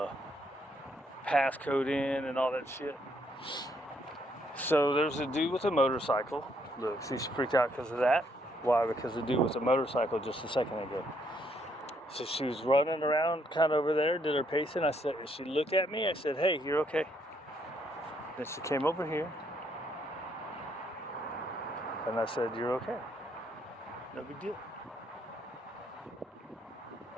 passcode in and all that shit. So there's a dude with a motorcycle. Look, see, she freaked out because of that. Why? Because the dude with a motorcycle just a second ago. So she was running around kind of over there, did her pacing. I said, she looked at me. I said, hey, you're okay. Then she came over here. And I said, you're okay. No big deal.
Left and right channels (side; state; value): both; normal; correlation 0.72